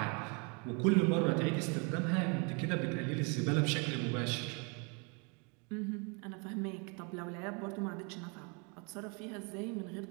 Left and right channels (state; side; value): quieter; left; 33.6 dB